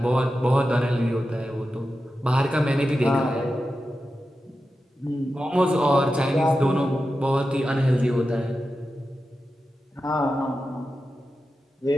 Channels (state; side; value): normal; both; correlation 0.91